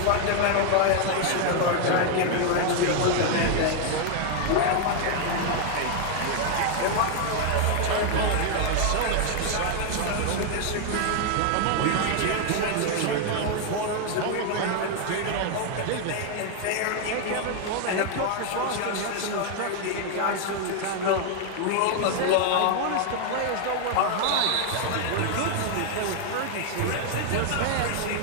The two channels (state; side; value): different; both; correlation 0.00